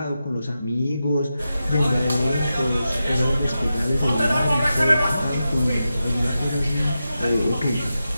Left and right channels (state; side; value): inverted; both; correlation -0.90